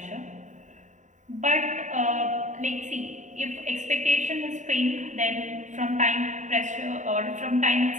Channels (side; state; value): left; late; 0.36 ms